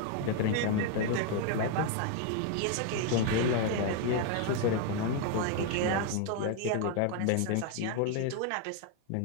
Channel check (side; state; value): both; different; correlation 0.00